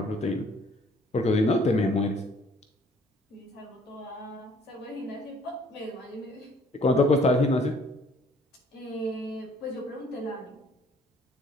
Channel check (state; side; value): normal; both; correlation 0.59